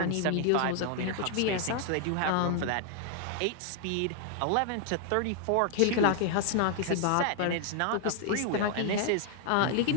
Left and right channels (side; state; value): both; different; correlation 0.00